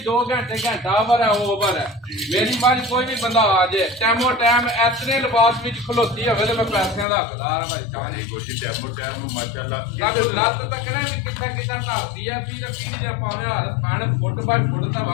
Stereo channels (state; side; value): drops out; right; at 7.1 s